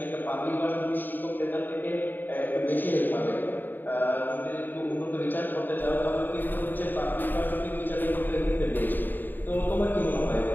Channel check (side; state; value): right; late; 0.090 ms